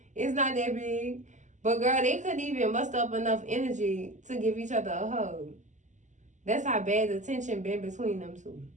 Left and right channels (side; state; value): left; late; 0.35 ms